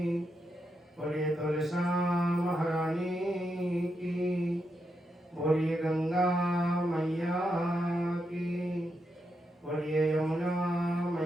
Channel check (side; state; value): both; normal; correlation 0.84